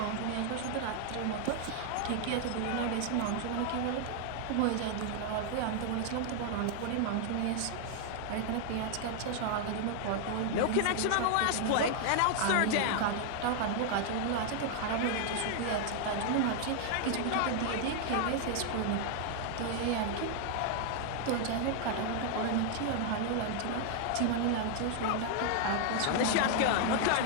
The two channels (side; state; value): both; different; correlation 0.00